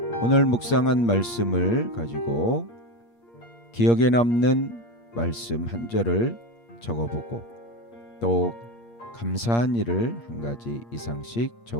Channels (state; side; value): late; right; 8.6 ms